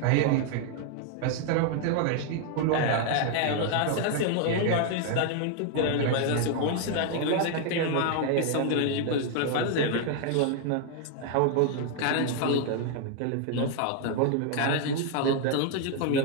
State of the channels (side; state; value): both; different; correlation 0.00